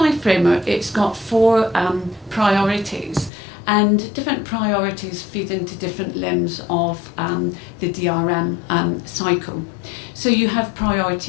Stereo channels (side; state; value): right; drops out; at 3.3 s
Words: Framework, it's got 4 priorities, and different priorities feed into different limbs of the DRM cycle. So you have